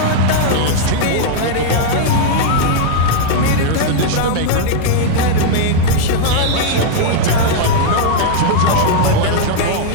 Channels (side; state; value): both; different; correlation -0.01